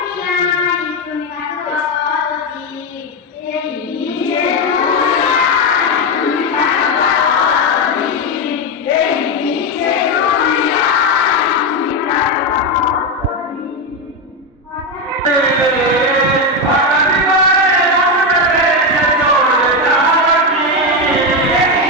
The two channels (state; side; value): normal; both; correlation 0.09